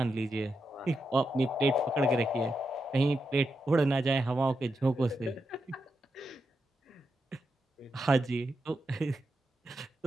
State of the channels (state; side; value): normal; both; correlation 0.85